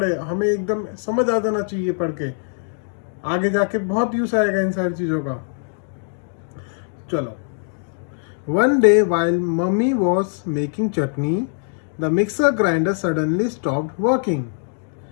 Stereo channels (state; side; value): silent; right; digital silence